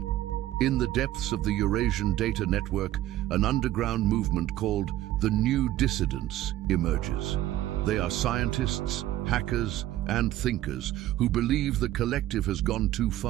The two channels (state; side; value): quieter; left; 14.2 dB